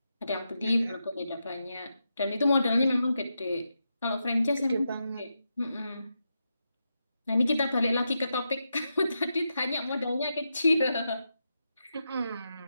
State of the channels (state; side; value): inverted; both; correlation -0.86